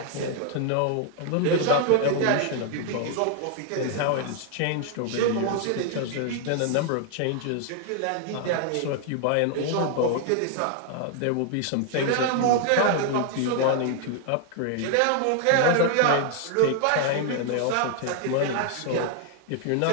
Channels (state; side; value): different; both; correlation 0.00